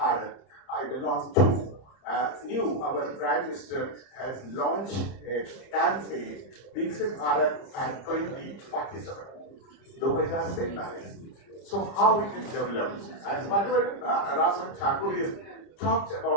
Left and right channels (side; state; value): right; late; 30 ms